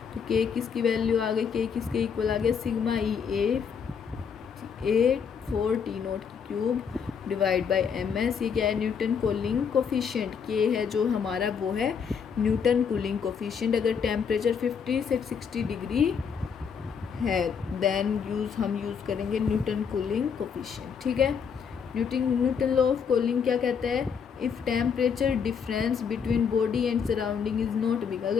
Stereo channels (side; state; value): right; quieter; 6.7 dB